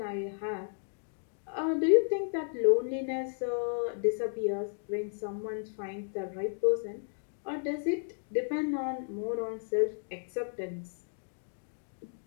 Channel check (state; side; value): silent; right; digital silence